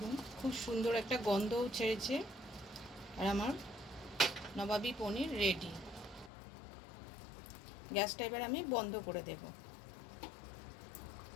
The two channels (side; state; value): right; drops out; at 6.3 s